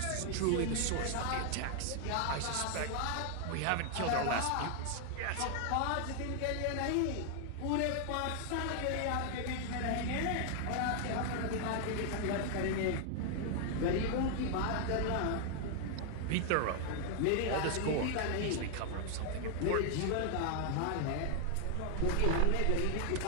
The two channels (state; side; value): different; both; correlation 0.00